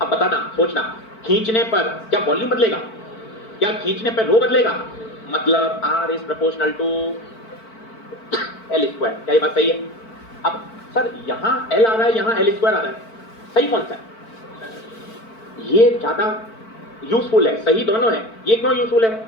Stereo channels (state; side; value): late; right; 4.5 ms